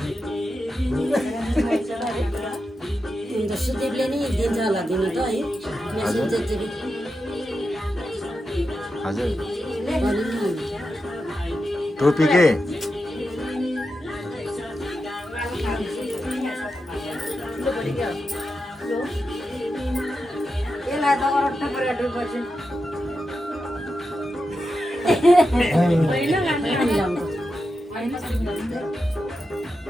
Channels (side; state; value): both; normal; correlation 0.89